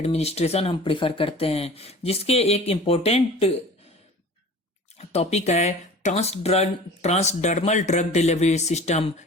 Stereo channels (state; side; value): normal; both; correlation 0.41